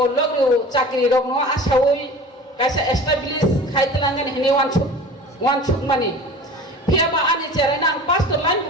logro chakri rok no asawoi kaisa establish khaitlangan hini one chuk mani piaba ani cerai nang pastor lain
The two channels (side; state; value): both; normal; correlation 0.39